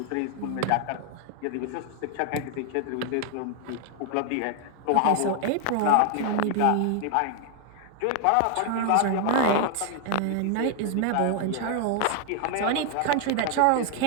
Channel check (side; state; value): both; different; correlation 0.00